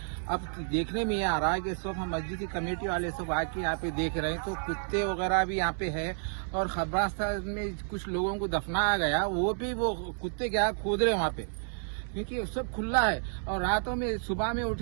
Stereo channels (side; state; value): left; silent; 57 dB below the other